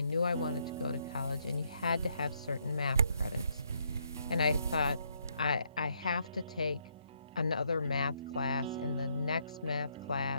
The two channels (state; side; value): inverted; both; correlation -0.74